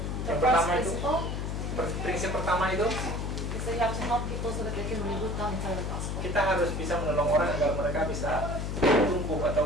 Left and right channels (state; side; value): noise; left; hum, 2 dB below the sound